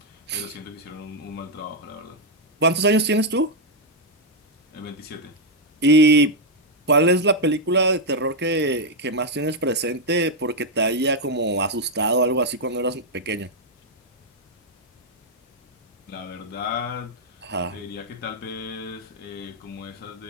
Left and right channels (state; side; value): normal; both; correlation -0.01